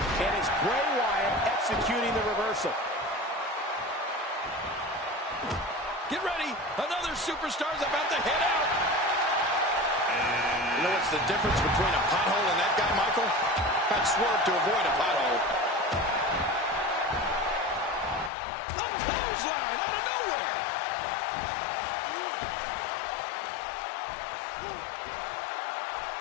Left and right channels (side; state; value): right; drops out; at 18.3 s